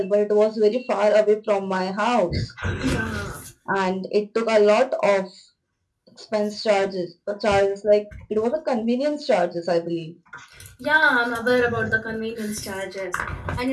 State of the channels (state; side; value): identical; both; correlation 1.00